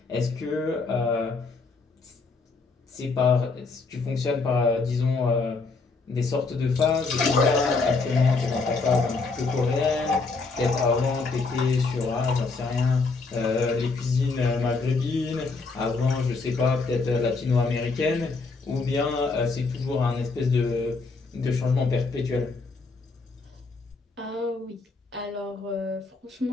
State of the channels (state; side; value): quieter; right; 4.1 dB